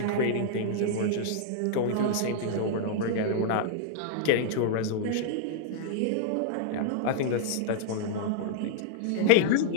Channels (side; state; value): both; different; correlation -0.01